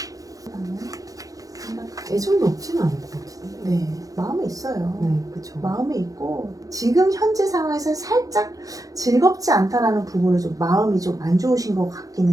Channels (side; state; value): left; late; 0.17 ms